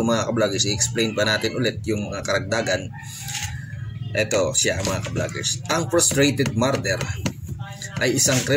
mga ka-vloggers, i-explain pa natin ulit yung mga karagdagan. Ito siya mga ka-vloggers. Ang frustrated murder ay isang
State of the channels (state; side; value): identical; both; correlation 1.00